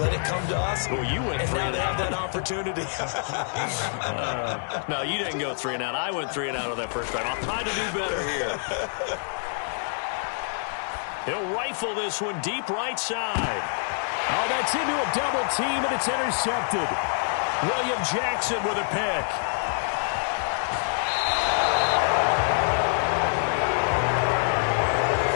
it come to us. Well, you went and 3 now and they out. have that opportunity. No, you didn't go 3 and out. I went 3 and out on that first drive. I'll try to do better here. He'll rifle this one deep right side. Oh, that's into a double team, and it's intercepted. William Jackson with a pick.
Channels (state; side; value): silent; right; digital silence